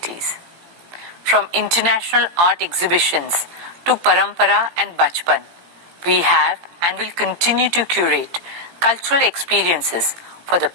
From international art exhibitions to Parampara and Bachpan, we have and will continue to curate cultural experiences for the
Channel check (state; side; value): late; left; 17 ms